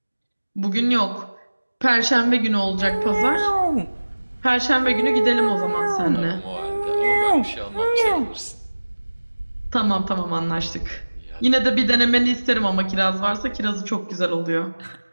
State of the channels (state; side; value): inverted; both; correlation -1.00